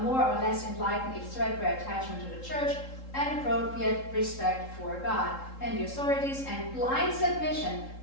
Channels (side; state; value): right; late; 3.7 ms